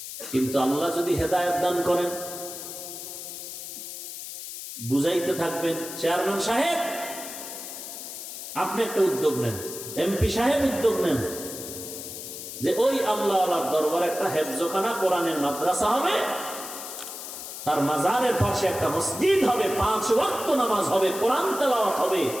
কিন্তু আল্লাহ যদি হেদায়েত দান করেন, বুঝাইতে থাকবেন, চেয়ারম্যান সাহেব আপনি একটা উদ্যোগ নেন, এমপি সাহেব উদ্যোগ নেন, যে ওই আল্লাহওয়ালার দরবারে একটা হেফজখানা কোরআনের মাদ্রাসা হবে, তার মাজারের পাশে একটা মসজিদ হবে, 5 ওয়াক্ত নামাজ হবে, কোরআন তেলাওয়াত হবে।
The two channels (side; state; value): left; noise; hiss, 9 dB below the sound